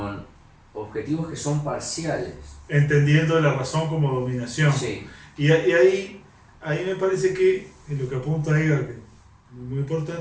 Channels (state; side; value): identical; both; correlation 1.00